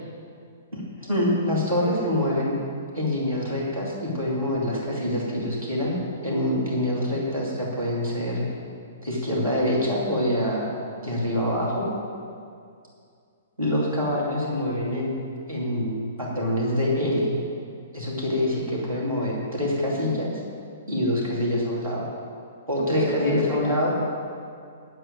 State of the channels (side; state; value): both; inverted; correlation -0.44